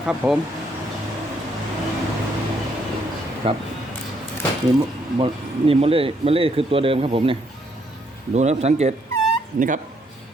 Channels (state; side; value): normal; both; correlation 0.72